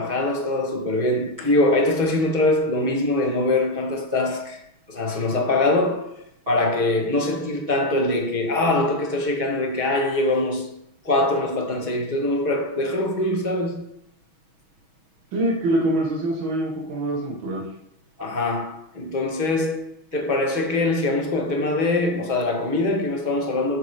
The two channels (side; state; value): left; late; 6.2 ms